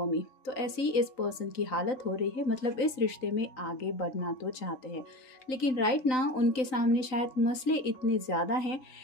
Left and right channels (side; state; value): right; late; 3.9 ms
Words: me. तो ऐसे ही इस पर्सन की हालत हो रही है। मतलब इस रिश्ते में आगे बढ़ना तो चाहते हैं, लेकिन राइट ना उनके सामने शायद मसले इतने ज़्यादा हैं